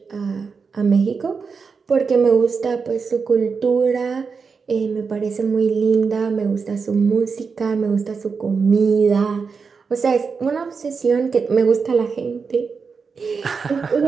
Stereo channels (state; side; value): quieter; left; 5.3 dB